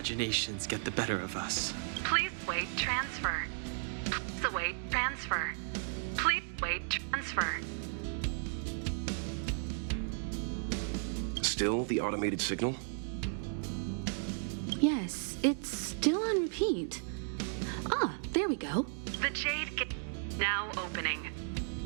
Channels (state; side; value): silent; left; digital silence